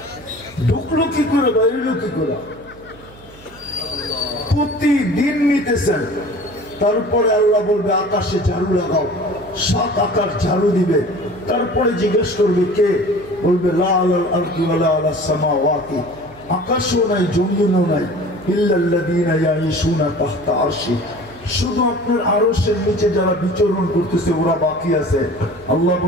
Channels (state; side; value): noise; right; hum, 23 dB below the sound